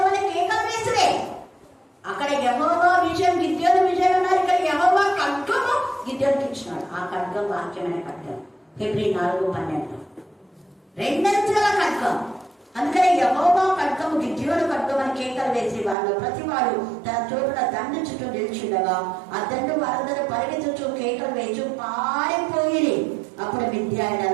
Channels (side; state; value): left; drops out; at 16.0 s